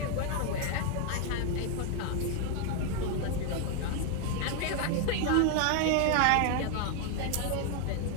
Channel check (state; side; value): different; both; correlation 0.01